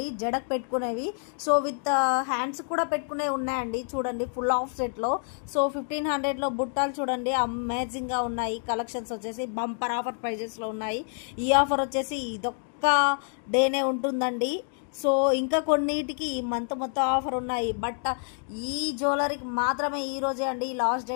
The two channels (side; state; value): right; silent; 56 dB below the other